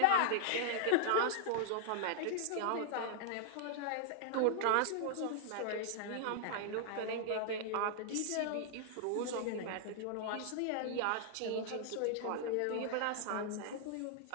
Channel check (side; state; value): both; different; correlation -0.01